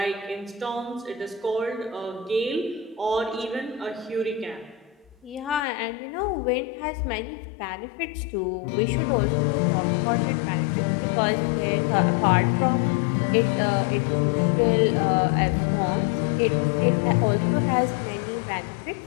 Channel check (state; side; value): drops out; right; at 5.7 s